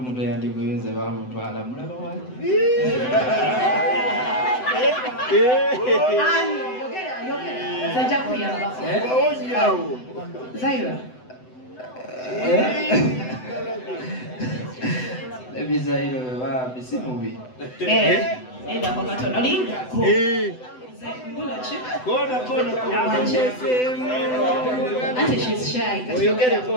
eyandiguyunze bamutwala mulaba wali zajja kuyambako Zaira ebizairo bebambi si mubi endako katono lindako Ante she's shy.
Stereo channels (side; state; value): right; late; 7.9 ms